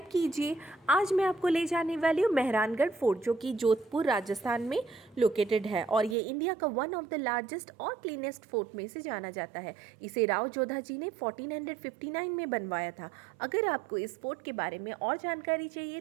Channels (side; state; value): left; drops out; at 6.2 s